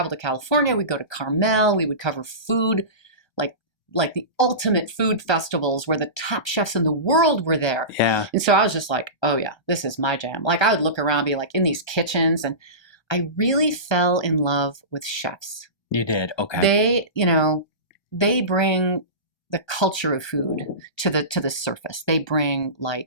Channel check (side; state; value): right; late; 1.2 ms